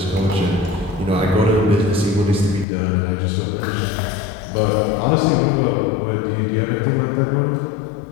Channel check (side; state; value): right; drops out; at 2.7 s